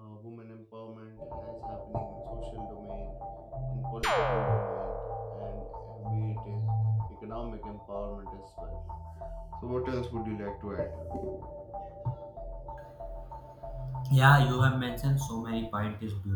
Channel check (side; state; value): both; identical; correlation 1.00